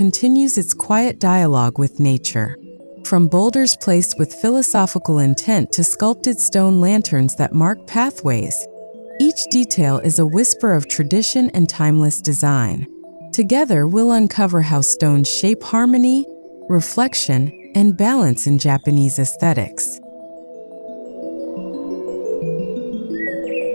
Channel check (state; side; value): inverted; both; correlation -1.00